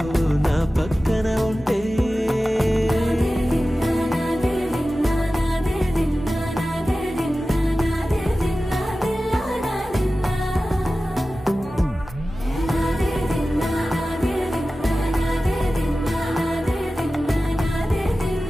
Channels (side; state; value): both; normal; correlation 0.95